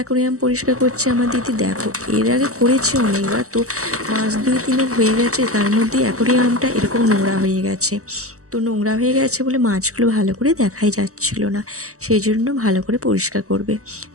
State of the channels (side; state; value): left; late; 0.65 ms